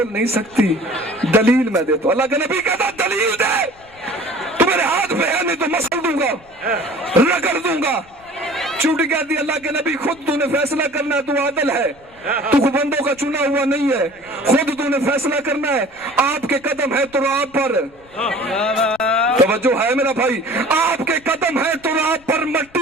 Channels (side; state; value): left; noise; rumble, 27 dB below the sound